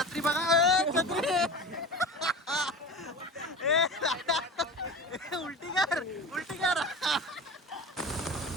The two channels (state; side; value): normal; both; correlation 0.32